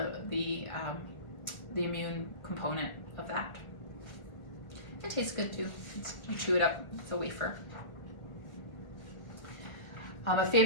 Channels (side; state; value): right; late; 1.6 ms